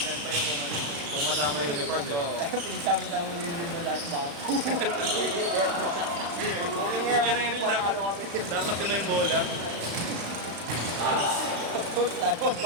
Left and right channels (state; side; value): late; left; 35 ms